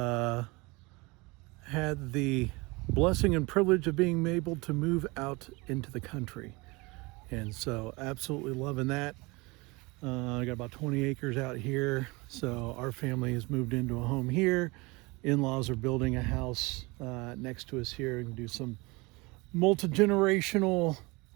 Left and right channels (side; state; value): left; quieter; 25.0 dB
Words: had the blessing and privilege of being able to move out into the country, and so absolutely loving that. I got about 20 acres out here, so our family has moved into a home here. In-laws are building a house next to us here and do some multi-generational